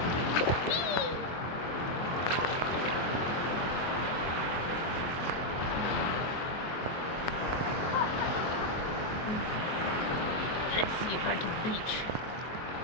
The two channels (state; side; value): late; right; 23 ms